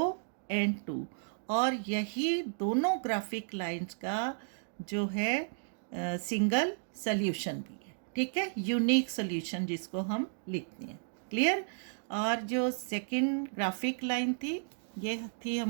and 2, और यही दोनों ग्राफिक लाइंस का जो है सिंगल सॉल्यूशन भी है। ठीक है, यूनिक सॉल्यूशन जिसको हम लिखते हैं, क्लियर। और जो सेकंड ग्राफिक लाइन थी ये थी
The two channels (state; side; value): silent; left; digital silence